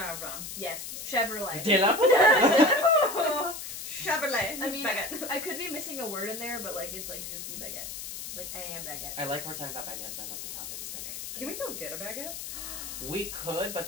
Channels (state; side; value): noise; left; hiss, 8 dB below the sound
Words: Yes, Chevrolet. De la Chevrolet. I mean, baguette. I could be missing a word in there, but like it's like je suis baguette. Like I am baguette. I like we're talking about baguettes. I love the topic is baguettes. Can we go get a baguette? We could, but